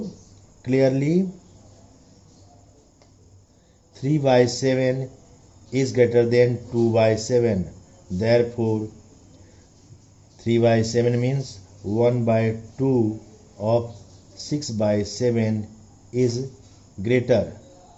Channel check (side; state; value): both; identical; correlation 1.00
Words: clearly 3 by 7 is greater than 2 by 7. Therefore 3 by 7 means 1 by 2 of 6 by 7 is greater